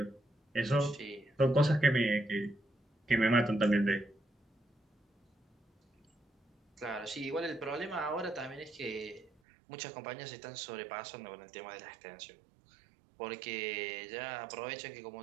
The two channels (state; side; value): drops out; left; at 9.3 s